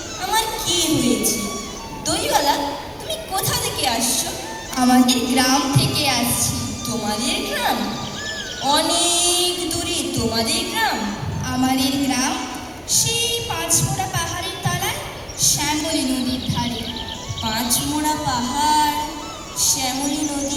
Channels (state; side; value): identical; both; correlation 1.00